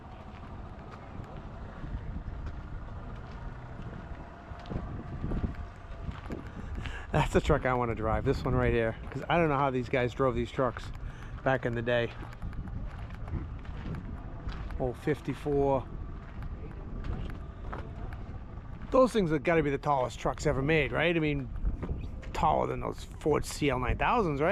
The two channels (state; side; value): identical; both; correlation 1.00